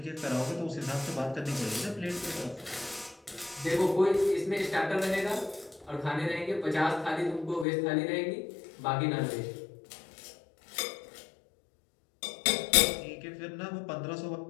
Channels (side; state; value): right; drops out; at 7.7 s